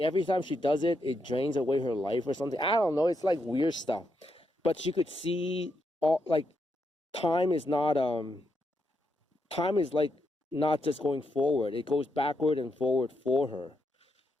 every time she does it, it drains away her life or something. I don't know. It's like weird stuff. But she could see all like time is not time is like not just going forward. It goes backward and forward for her.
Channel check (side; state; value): both; normal; correlation 0.81